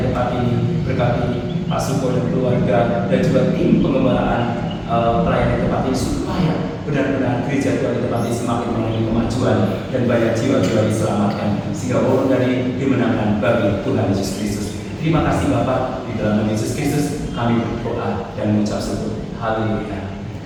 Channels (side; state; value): both; identical; correlation 1.00